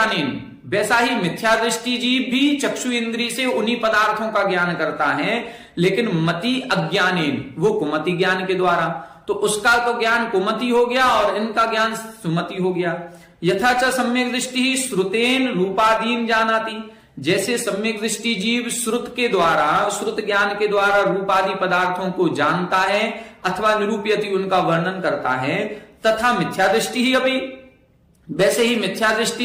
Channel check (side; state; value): both; identical; correlation 1.00